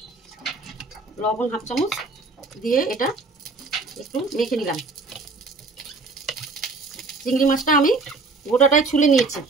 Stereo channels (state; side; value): quieter; left; 3.6 dB